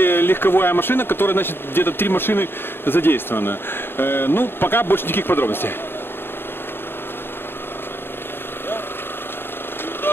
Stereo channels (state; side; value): late; right; 0.11 ms